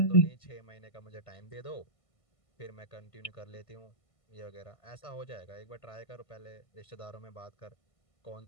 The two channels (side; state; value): right; late; 1.5 ms